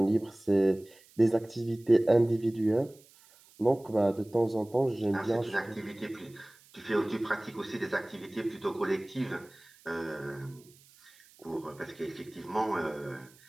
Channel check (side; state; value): right; noise; hiss, 27 dB below the sound